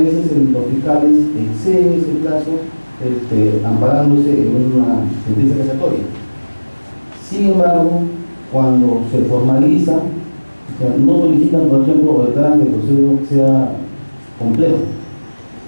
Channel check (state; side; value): inverted; both; correlation -1.00